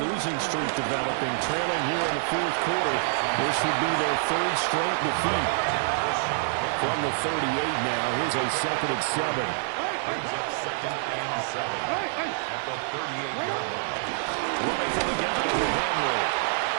losing streak developing, trailing here in the fourth quarter. This would be their third straight defeat. From the 38 now, here's a 2nd and 7. Brings up 2nd and 7 at the 38-yard line. Running from the gun with Henry.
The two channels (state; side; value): silent; left; digital silence